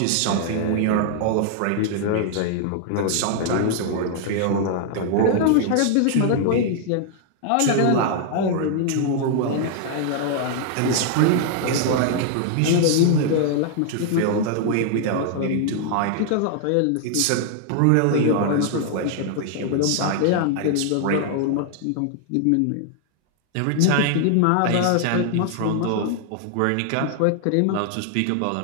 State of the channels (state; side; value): different; both; correlation 0.00